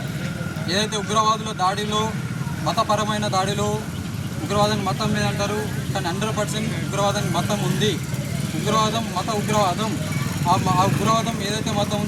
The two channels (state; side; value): identical; both; correlation 1.00